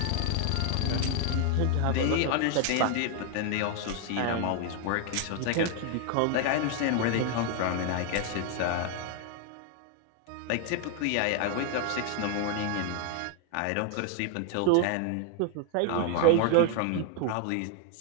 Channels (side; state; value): both; different; correlation 0.00